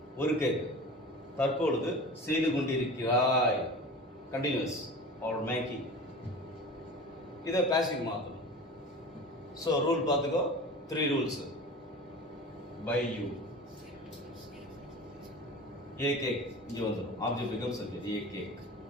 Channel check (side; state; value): both; normal; correlation 0.36